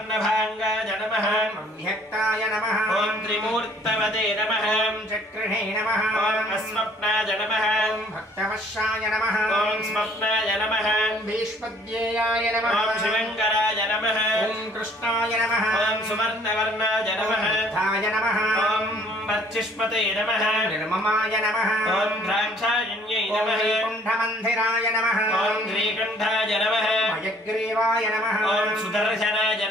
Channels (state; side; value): normal; both; correlation 0.58